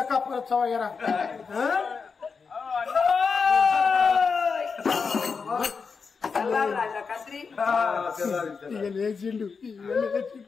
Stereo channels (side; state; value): right; quieter; 5.3 dB